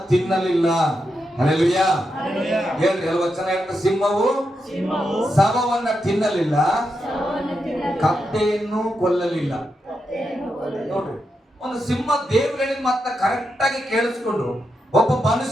ತಿನ್ನಲಿಲ್ಲ. ಹಲ್ಲೆಲೂಯಾ. ಹೇಳ್ರಿ, ವಚನ ಹೇಳ್ತ, ಸಿಂಹವು ಶವವನ್ನ ತಿನ್ನಲಿಲ್ಲ, ಕತ್ತೆಯನ್ನು ಕೊಲ್ಲಲಿಲ್ಲ. ನೋಡ್ರಿ, ಒಂದು ಸಿಂಹ ದೇವ್ರು ಹೇಳಿದ ಮಾತ್ರ ಕರೆಕ್ಟ್ ಆಗಿ ಕೇಳಿಸ್ಕೊಂಡು ಒಬ್ಬ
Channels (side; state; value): both; normal; correlation 0.85